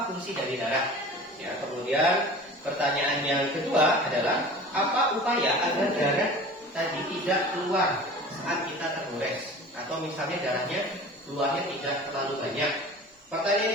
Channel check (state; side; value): normal; both; correlation 0.40